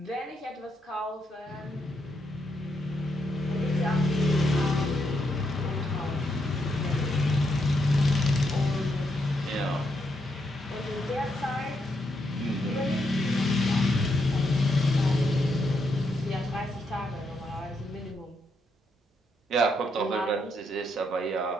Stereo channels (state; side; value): normal; both; correlation 0.79